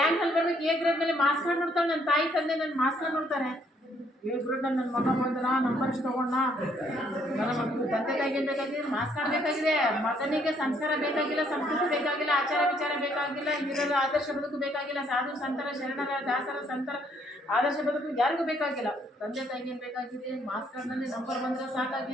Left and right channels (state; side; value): normal; both; correlation 0.68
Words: ಅಲ್ಲಿ ಬರ್ಬೇಕು, ಎ ಗ್ರೇಡ್ ಮೇಲೆ ಮಾರ್ಕ್ಸ್ ಕಾರ್ಡ್ ನೋಡ್ತಾಳೆ, ನನ್ನ ತಾಯಿ ತಂದೆ ನನ್ನ ಮಾರ್ಕ್ಸ್ ಕಾರ್ಡ್ ನೋಡ್ತಾರೆ. ಎ ಗ್ರೇಡ್ ನನ್ನ ಮಗ ಬಂದನ, ನಂಬರ್ಸ್ ತಗೊಂಡ. ನನ್ನ ಮಕ್ಕಳು ತಂದೆ ತಾಯಿಗೆ ಏನು ಬೇಕಾಗಿದೆ? ಮಾರ್ಕ್ಸ್ ಕಾರ್ಡ್ ಬೇಕಾಗಿದೆ. ಮಗನಿಗೆ ಸಂಸ್ಕಾರ ಬೇಕಾಗಿಲ್ಲ, ಸಂಸ್ಕೃತಿ ಬೇಕಾಗಿಲ್ಲ, ಆಚಾರ ವಿಚಾರ ಬೇಕಾಗಿಲ್ಲ, ಹಿರಿಯರ ಆದರ್ಶ ಬದುಕು ಬೇಕಾಗಿಲ್ಲ, ಸಾಧು ಸಂತರ ಶರಣರ ದಾಸರ ಸಂತರ ಆದರ್ಶ ಬದುಕು ಯಾರಿಗೂ ಬೇಕಾಗಿಲ್ಲ. ತಂದೆ ತಾಯಿಗೆ ಏನು ಬೇಕಾಗಿದೆ? ಮಾರ್ಕ್ಸ್ ಕಾರ್ಡ್ನಲ್ಲಿ ನಂಬರ್ ಬಂದರೆ